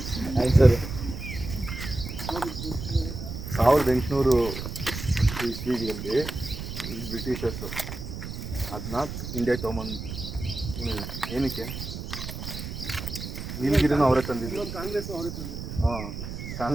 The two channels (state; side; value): noise; right; rumble, 8 dB below the sound